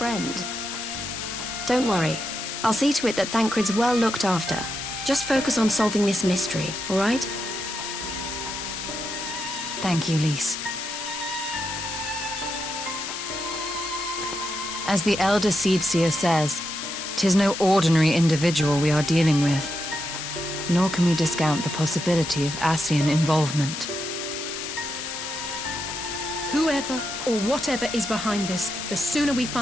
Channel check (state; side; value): noise; left; hiss, 6 dB below the sound